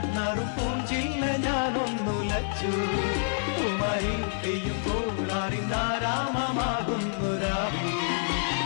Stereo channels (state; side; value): silent; right; digital silence